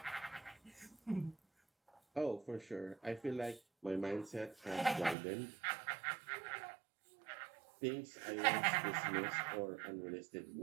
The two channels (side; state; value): left; drops out; at 5.2 s